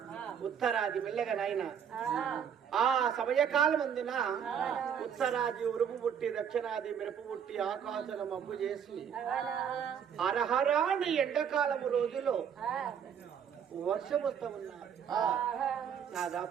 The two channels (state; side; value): quieter; left; 8.0 dB